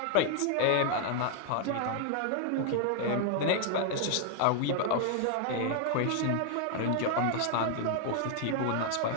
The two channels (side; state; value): both; different; correlation 0.00